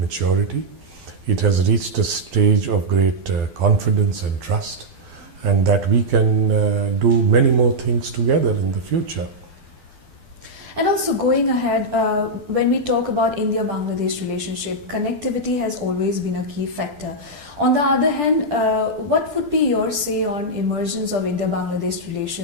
It has reached a stage of great confidence and trust, and that we can do many more things together in the future. And also going ahead, when we talk about India-Bangladesh relationship, connectivity has always been a key factor. On the other hand, what would be your say on emergence of India-Bangladesh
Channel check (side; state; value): left; late; 12 ms